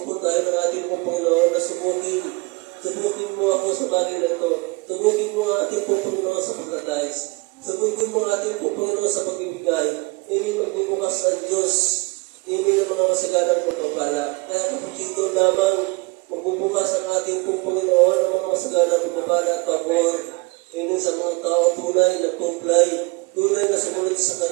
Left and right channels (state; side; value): quieter; left; 26.6 dB